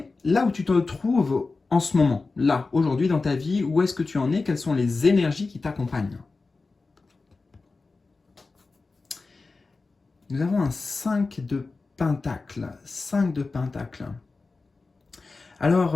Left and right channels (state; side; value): quieter; right; 3.9 dB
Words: là où tu te trouves en ce moment, là, aujourd'hui dans ta vie, où est-ce que tu en es, quelles sont les énergies qui t'accompagnent. Nous avons un 5 de pentacles. 5 de pentacles.